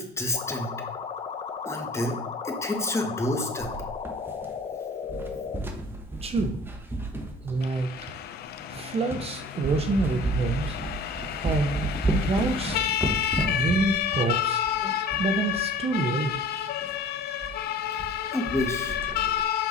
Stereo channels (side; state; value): both; normal; correlation 0.45